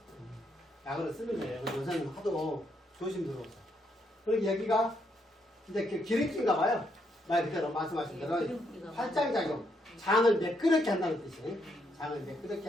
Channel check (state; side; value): normal; both; correlation 0.76